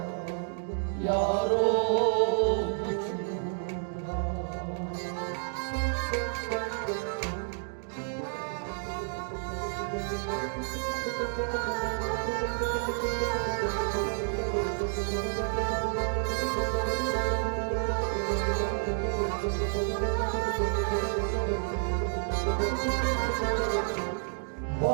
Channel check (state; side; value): silent; left; 58 dB below the other